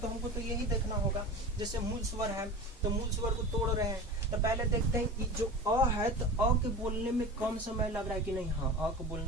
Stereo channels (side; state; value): both; normal; correlation 0.32